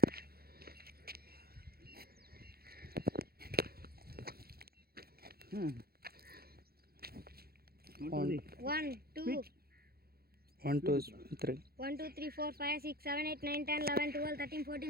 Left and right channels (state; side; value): late; left; 0.45 ms